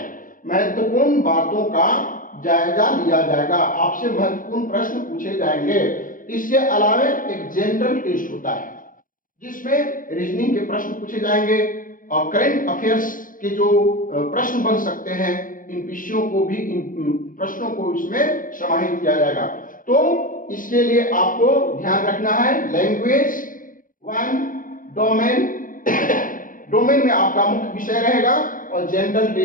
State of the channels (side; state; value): right; late; 0.39 ms